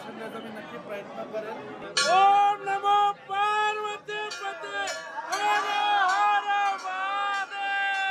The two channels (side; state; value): both; identical; correlation 1.00